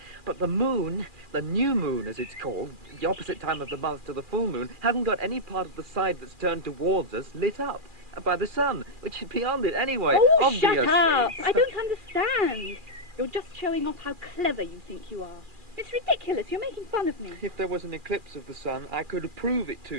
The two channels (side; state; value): left; late; 2.4 ms